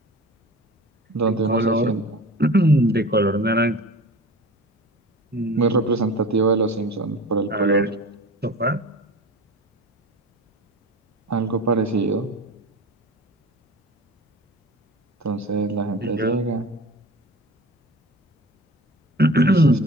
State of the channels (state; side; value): normal; both; correlation 0.37